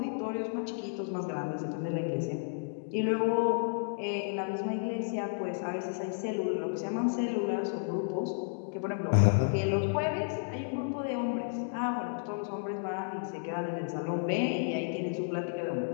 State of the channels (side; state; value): right; silent; digital silence